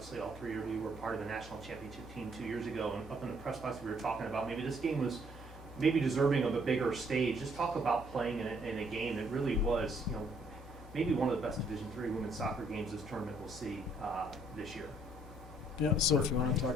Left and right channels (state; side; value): normal; both; correlation 0.66